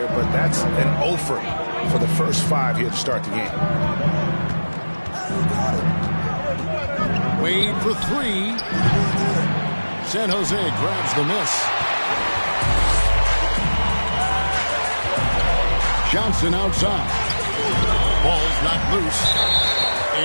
but that's an offer for the first 5 here to start the game. Wade for 3. San Jose grabs the miss. Johnson outside. Ball's not loose.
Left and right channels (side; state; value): both; inverted; correlation -1.00